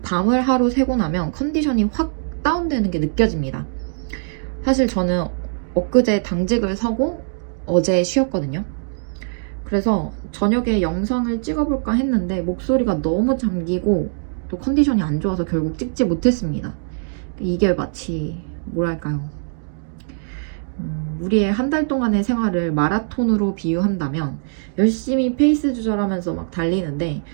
밤을 하루 새고 나면 컨디션이 확 다운되는 게 느껴집니다. 사실 저는 엊그제 당직을 서고 어제 쉬었거든요. 그래서 저녁에 영상을 찍어볼까 했는데 목소리가 너무 잠기고 또 컨디션이 안 좋아서 결국 찍지 못했습니다. 이게 마치 뭐랄까요, 우리의 한 달 동안의 생활을 마라톤으로 비유한다면 열심히 페이스 조절하면서 막 달리는데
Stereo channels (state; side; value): silent; left; digital silence